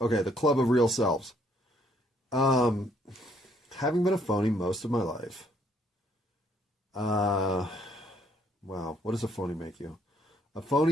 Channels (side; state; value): both; normal; correlation 0.67